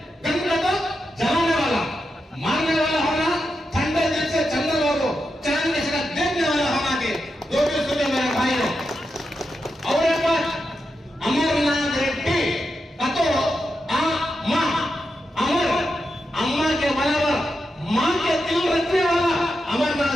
तो जलाने वाला मारने वाला होना, ठंडे दिल से चंद्रबाबू चांद के साथ देखने वाला होना के दो भी सुने मेरे भाइयों। और एक बात अमरनाथ रेड्डी का तो माँ अमर अम्मा के बराबर माँ के दिल रखने वाला अमरनाथ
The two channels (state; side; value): normal; both; correlation 0.87